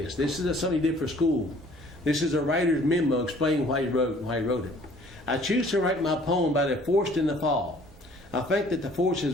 This is something he did for school. This is a writer's memo explaining why he wrote it. "I choose to write my poem about a forest in the fall. I think that the forest is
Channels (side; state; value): both; normal; correlation 0.55